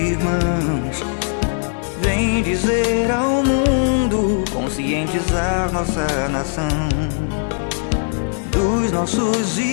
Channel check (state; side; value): silent; right; 64 dB below the other